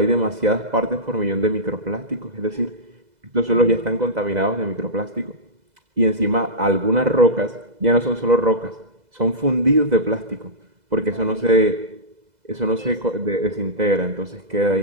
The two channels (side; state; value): left; late; 2.0 ms